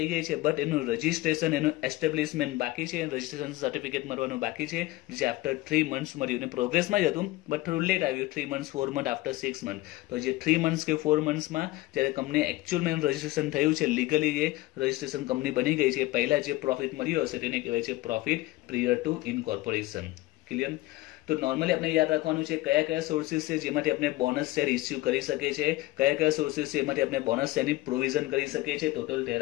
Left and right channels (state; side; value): quieter; right; 18.5 dB